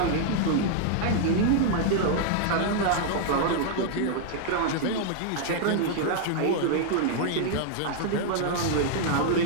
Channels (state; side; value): different; both; correlation 0.00